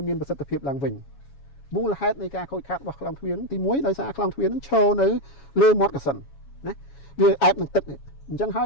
មានប្រសិទ្ធភាពឡើងវិញមូលហេតុនៃការខូចខាតរបស់ខ្លងទ្វារហ្នឹងទី1ដោយសារខ្លងទ្វារហ្នឹងឈរនៅលើមាត់កសិនណាវាអែបនឹងទឹកនេះអញ្ចឹងហើ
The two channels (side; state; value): right; late; 7.2 ms